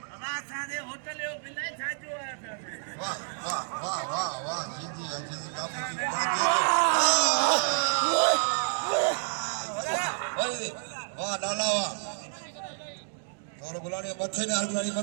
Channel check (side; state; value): left; silent; digital silence